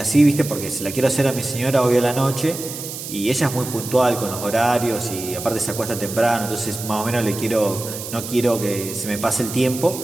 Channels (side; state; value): right; noise; hiss, 9 dB below the sound